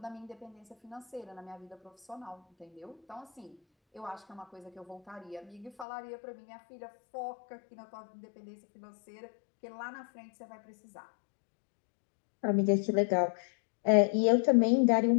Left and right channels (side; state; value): right; drops out; at 5.9 s